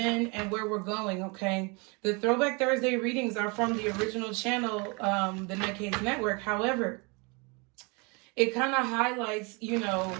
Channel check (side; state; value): left; quieter; 30.4 dB